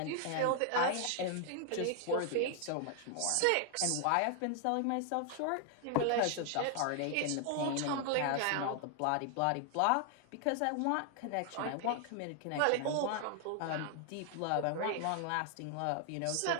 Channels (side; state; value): both; different; correlation 0.00